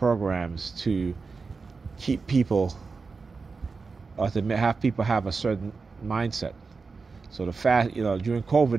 to keep people, or to have people have a certain mindset. So the fast, during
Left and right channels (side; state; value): left; quieter; 4.5 dB